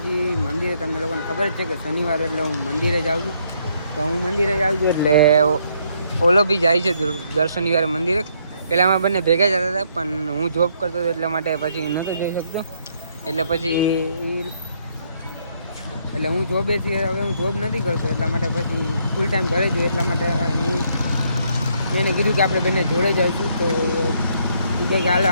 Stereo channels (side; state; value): both; inverted; correlation -0.71